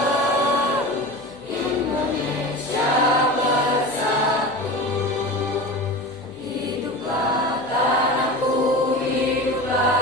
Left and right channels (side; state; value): left; noise; hum, 26 dB below the sound